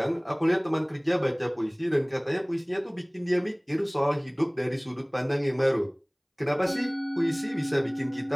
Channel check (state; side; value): identical; both; correlation 1.00